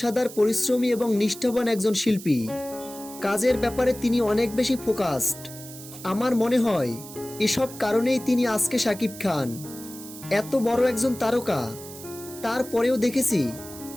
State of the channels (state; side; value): noise; right; hiss, 15 dB below the sound